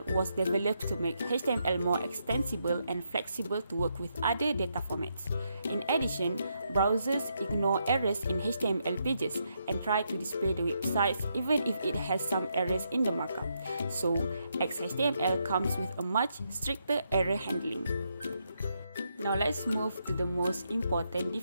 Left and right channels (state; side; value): inverted; both; correlation -0.80